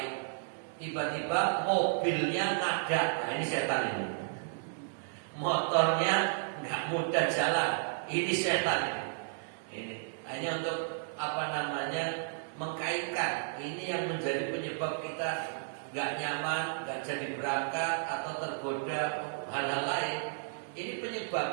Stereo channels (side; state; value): left; silent; digital silence